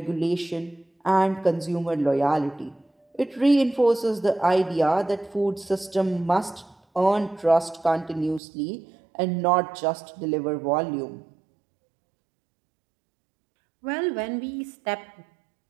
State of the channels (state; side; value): drops out; left; at 8.4 s